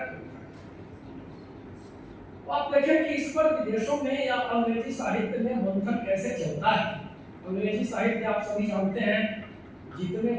कविता। तो आप देखें कि इस पर विदेशों में या अंग्रेजी साहित्य में मंथन कैसे चलता है। अंग्रेजी साहित्य आप सभी जानते हैं, जितने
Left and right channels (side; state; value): both; identical; correlation 1.00